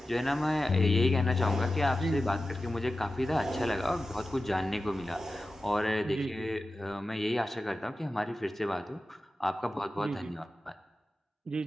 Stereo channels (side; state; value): both; normal; correlation 0.93